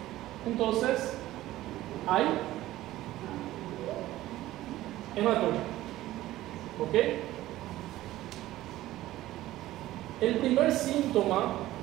entonces hay hematuria. ¿Ok? El primer síntoma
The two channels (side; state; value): left; quieter; 15.5 dB